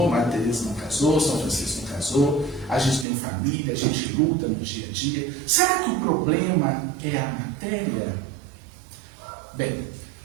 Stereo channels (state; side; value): drops out; left; at 3.1 s